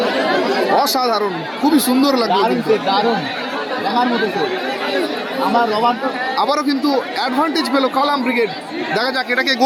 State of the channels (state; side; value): identical; both; correlation 1.00